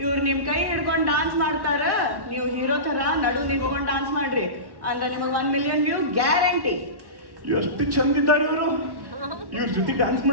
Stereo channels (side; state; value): left; late; 1.1 ms